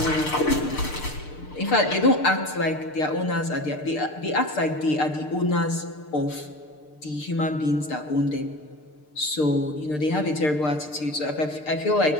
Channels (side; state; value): right; late; 6.6 ms